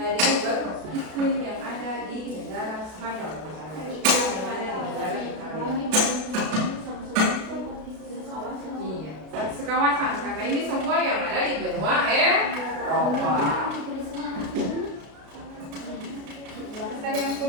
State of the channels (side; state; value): left; late; 32 ms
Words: iklim yang ada di negara Spanyol, misalnya iklim yang ada di negara Italia. Iya, sekawasan karena ini semua yang ada di benua Eropa. Tadi yang